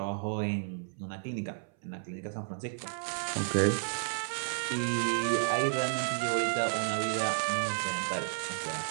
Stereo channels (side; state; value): left; silent; 56 dB below the other